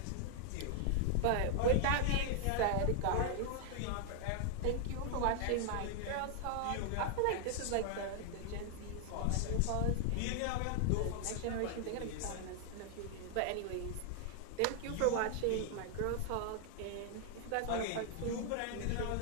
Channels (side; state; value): both; different; correlation 0.00